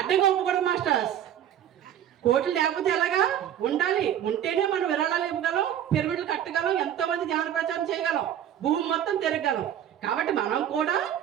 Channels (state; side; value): quieter; left; 10.3 dB